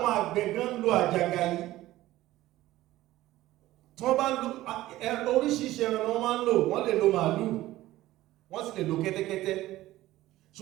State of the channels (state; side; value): quieter; left; 16.1 dB